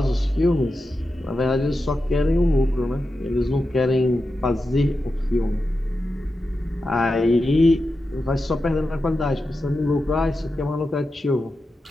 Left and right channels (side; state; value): both; normal; correlation 0.90